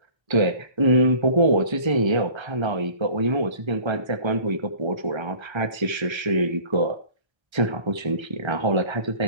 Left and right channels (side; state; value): left; late; 1.3 ms